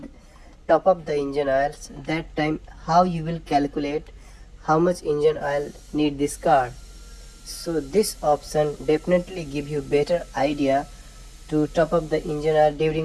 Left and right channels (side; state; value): both; identical; correlation 1.00